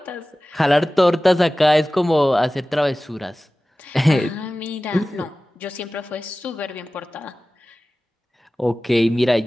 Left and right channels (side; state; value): both; normal; correlation 0.97